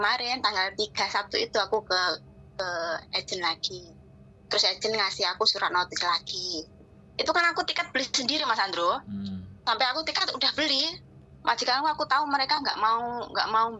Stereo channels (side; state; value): both; identical; correlation 1.00